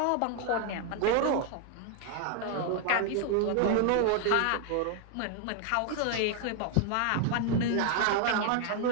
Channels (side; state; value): both; different; correlation 0.01